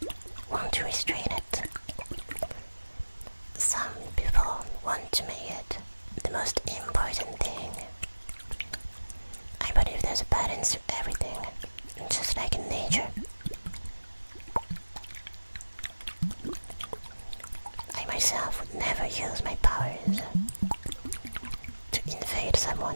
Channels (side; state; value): both; inverted; correlation -1.00